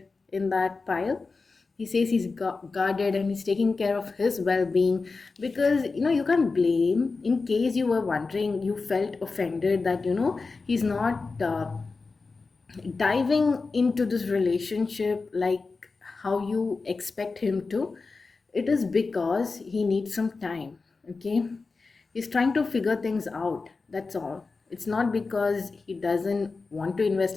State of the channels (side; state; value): right; quieter; 4.2 dB